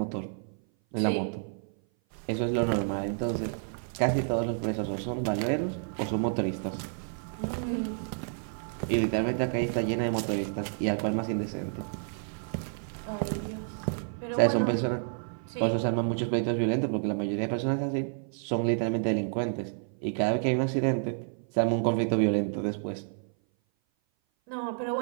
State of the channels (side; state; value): left; silent; 56 dB below the other